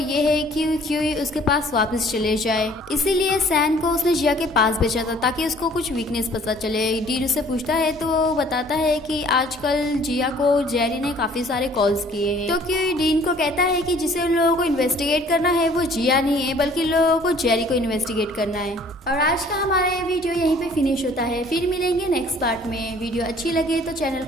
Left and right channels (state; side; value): normal; both; correlation 0.55